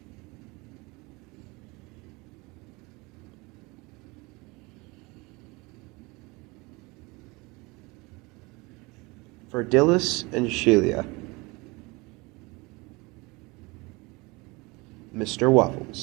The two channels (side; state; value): left; quieter; 25.1 dB